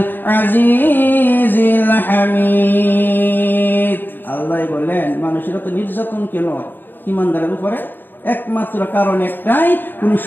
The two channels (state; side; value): late; right; 0.093 ms